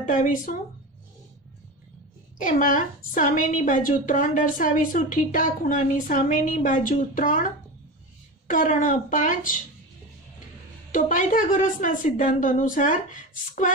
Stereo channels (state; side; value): normal; both; correlation 0.26